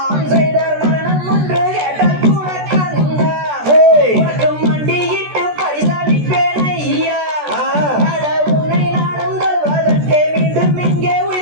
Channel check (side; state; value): left; late; 14 ms